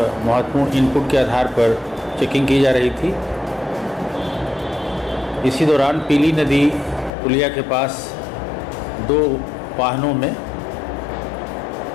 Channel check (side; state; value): right; drops out; at 7.1 s